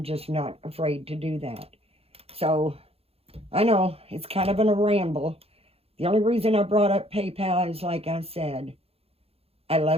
just not afraid to do that. So, I know, it's kind of a ramble. The only reason I brought up PayPal is, like I said, I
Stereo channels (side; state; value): left; late; 0.29 ms